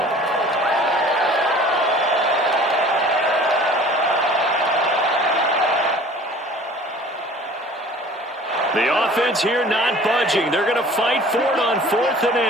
The offense here not budging. They're going to fight for it on 4th and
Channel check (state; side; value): normal; both; correlation 0.47